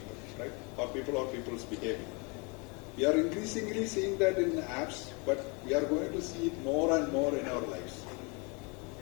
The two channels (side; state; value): right; quieter; 31.3 dB